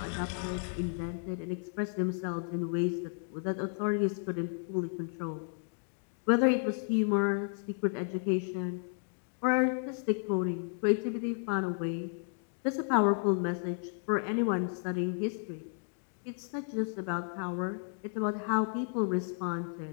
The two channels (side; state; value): right; silent; 56 dB below the other